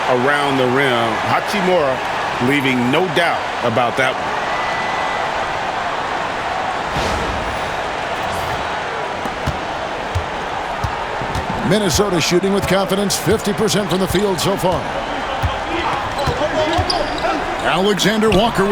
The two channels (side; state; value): both; identical; correlation 1.00